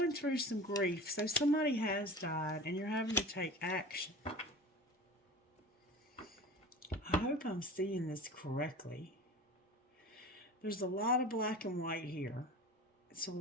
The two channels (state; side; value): normal; both; correlation 0.36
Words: through some grief. So somebody has died and you're having to take action. I hope I'm seeing this correctly. There's a lot of black and white here. It's a